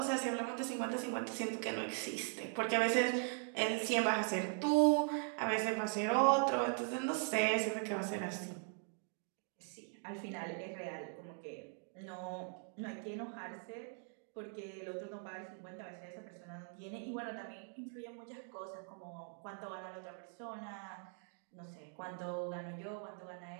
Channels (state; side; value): silent; left; 51 dB below the other